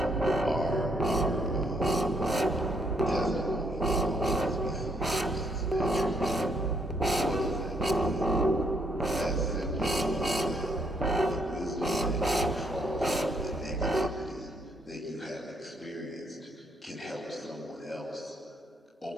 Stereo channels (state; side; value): normal; both; correlation 0.71